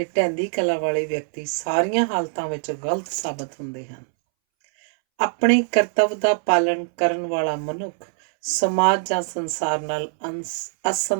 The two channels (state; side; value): silent; left; 64 dB below the other